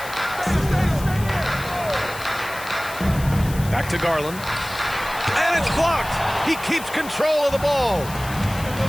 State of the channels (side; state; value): left; noise; hiss, 14 dB below the sound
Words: Back to Garland. And it's blocked. He keeps control of the ball.